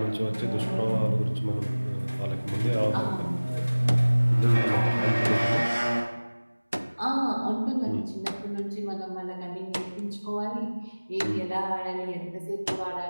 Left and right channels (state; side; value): inverted; both; correlation -1.00